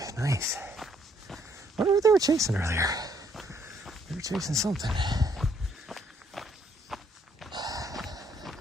nice. I wonder what they were chasing earlier. They were chasing something.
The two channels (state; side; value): normal; both; correlation 0.68